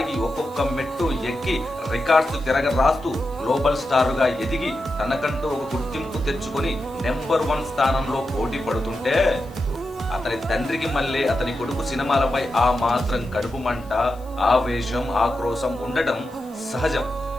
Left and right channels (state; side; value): noise; left; hiss, 27 dB below the sound